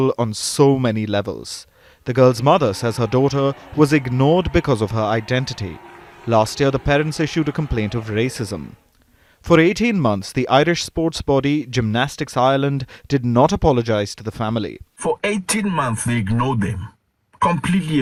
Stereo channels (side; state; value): both; identical; correlation 1.00